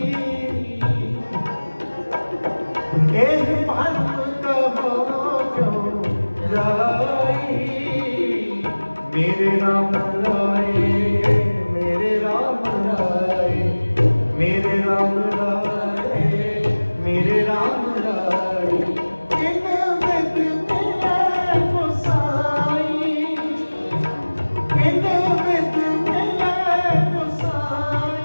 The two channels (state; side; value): inverted; both; correlation -1.00